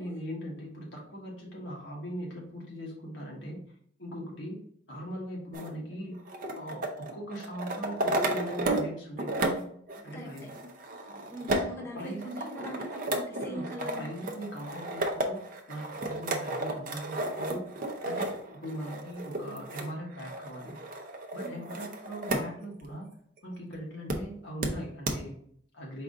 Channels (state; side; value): normal; both; correlation 0.19